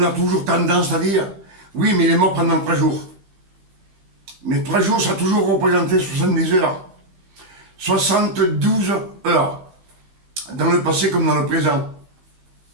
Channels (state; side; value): late; left; 15 ms